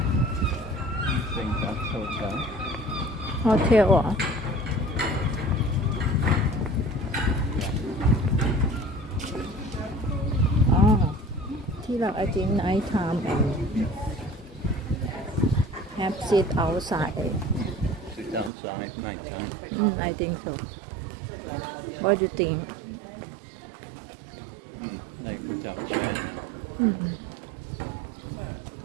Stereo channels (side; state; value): left; drops out; at 18.5 s